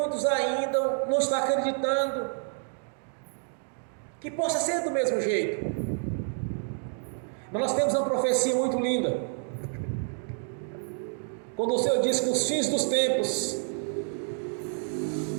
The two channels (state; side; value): silent; left; 59 dB below the other